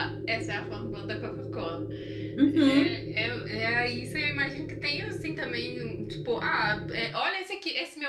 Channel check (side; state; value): both; identical; correlation 1.00